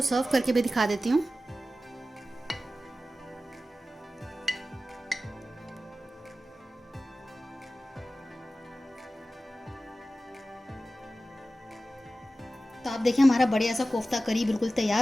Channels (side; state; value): both; normal; correlation 0.95